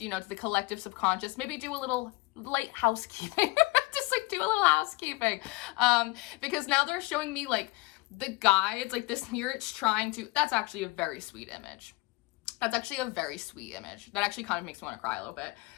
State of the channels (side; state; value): right; quieter; 23.9 dB